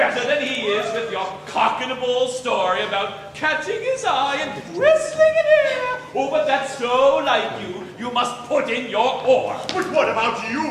than he is with your cock and a bull story about catching his eye and whistling in air. Oh, but that's so like you. You must put in your oar. But what about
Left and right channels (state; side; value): identical; both; correlation 1.00